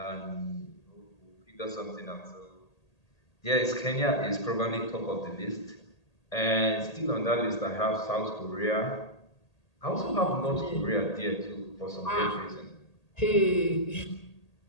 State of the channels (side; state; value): right; late; 1.8 ms